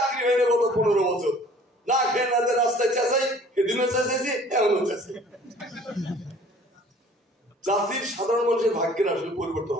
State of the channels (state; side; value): normal; both; correlation 0.52